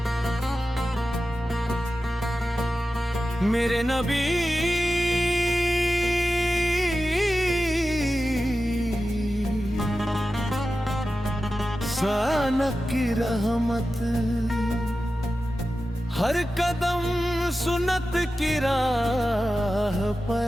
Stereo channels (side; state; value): both; normal; correlation 0.93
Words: मेरे नबी सानक की रहमत, हर कदम सुन्नत की राह पे